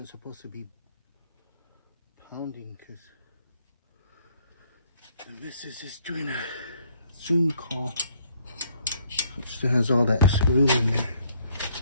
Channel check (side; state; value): both; inverted; correlation -0.66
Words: supposed to be pounding because this is just doing a Zoom call, which still has all that screw in there.